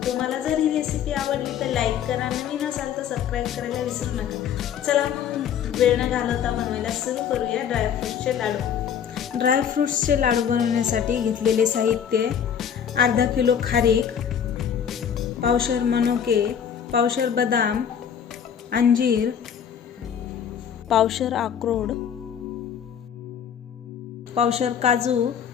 तुम्हाला जर ही रेसिपी आवडली तर लाईक करा, नवीन असाल तर सबस्क्राईब करायला विसरू नका। चला मग वेळ न घालवता बनवायला सुरू करूया ड्रायफ्रुट्सचे लाडू। ड्रायफ्रुट्सचे लाडू बनवण्यासाठी घेतलेले साहित्य: अर्धा किलो खारीक, पावशर मनुके, पावशर बदाम, अंजीर, पावशर अक्रोड, पावशर काजू,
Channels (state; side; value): quieter; right; 8.3 dB